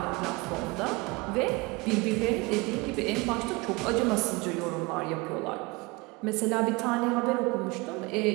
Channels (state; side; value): quieter; left; 24.9 dB